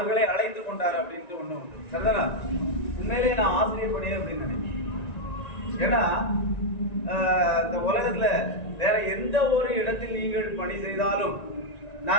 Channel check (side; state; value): right; late; 1.9 ms